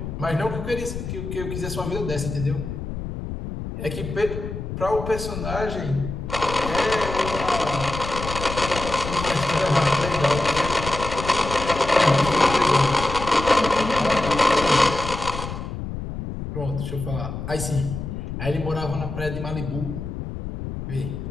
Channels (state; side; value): noise; left; rumble, 7 dB below the sound